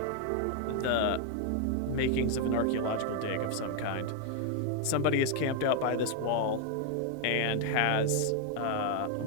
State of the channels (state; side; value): different; both; correlation 0.00